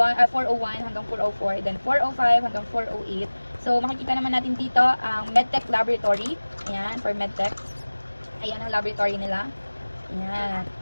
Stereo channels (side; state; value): both; inverted; correlation -1.00